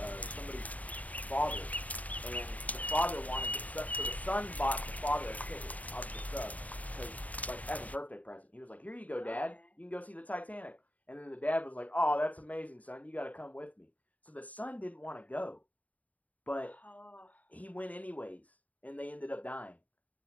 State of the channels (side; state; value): right; late; 0.072 ms